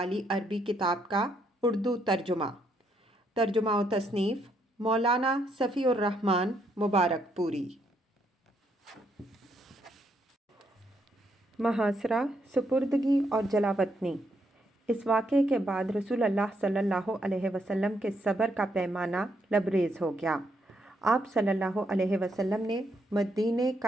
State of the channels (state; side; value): normal; both; correlation 0.75